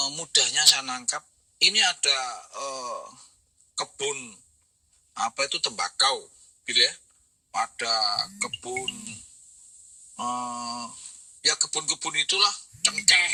mudahnya saya nangkap, ini ada kebun, apa itu, tembakau, gitu ya. Ada kebun, ya kebun-kebun itulah,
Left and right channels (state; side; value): identical; both; correlation 1.00